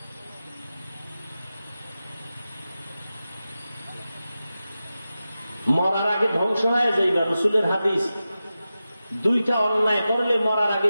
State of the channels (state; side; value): inverted; both; correlation -0.93